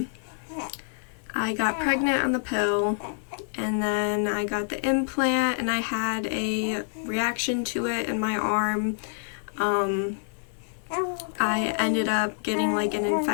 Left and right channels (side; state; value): right; silent; digital silence